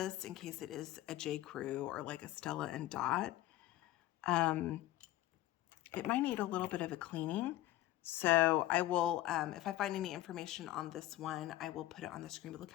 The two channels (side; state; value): right; quieter; 15.7 dB